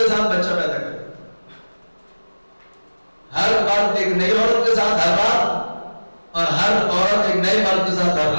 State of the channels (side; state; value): both; inverted; correlation -1.00